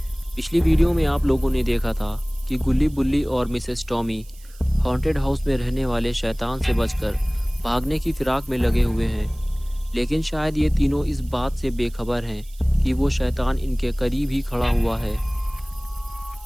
पिछली वीडियो में आप लोगों ने देखा था कि गुल्ली बुल्ली और मिसेस टॉमी हॉन्टेड हाउस में रहने वाले शैतान से बचकर भागने की फिराक में लगे हुए हैं, लेकिन शायद ये तीनों इस बात से बेखबर हैं कि वो शैतान इनके करीब ही खड़ा हुआ है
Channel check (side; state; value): right; noise; hiss, 25 dB below the sound